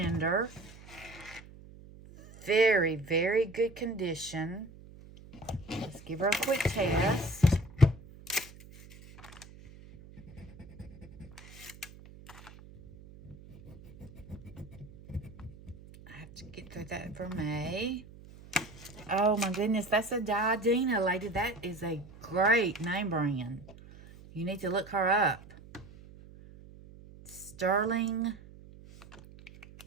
Very, very good condition. Let's give her a quick test. I have to get through that vermeil. Oh my goodness, that's a Diadina, lady. That is a great name brand. You need to look her up. Sterling.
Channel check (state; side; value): noise; right; hum, 19 dB below the sound